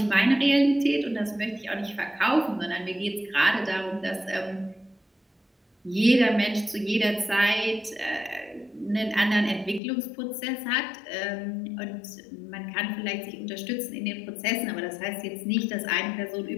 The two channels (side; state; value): right; drops out; at 9.8 s